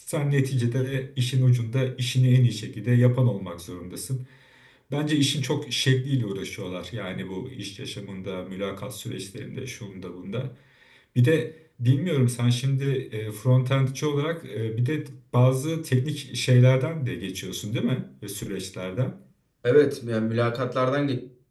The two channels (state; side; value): identical; both; correlation 1.00